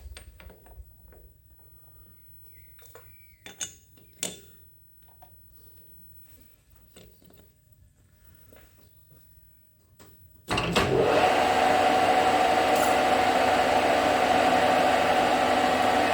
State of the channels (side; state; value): both; identical; correlation 1.00